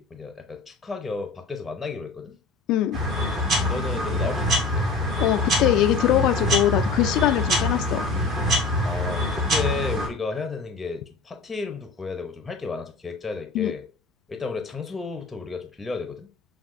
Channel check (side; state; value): right; quieter; 4.2 dB